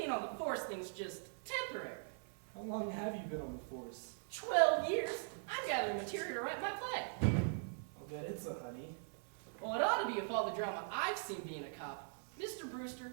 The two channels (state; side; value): silent; left; digital silence